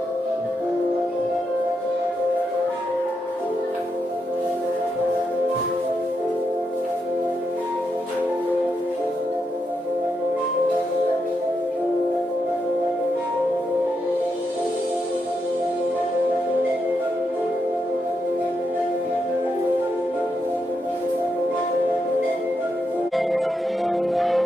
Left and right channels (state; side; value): normal; both; correlation 0.82